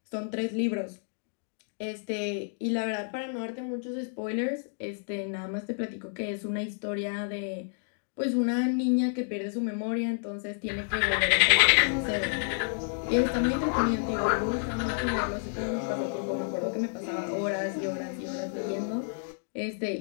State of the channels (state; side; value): silent; right; digital silence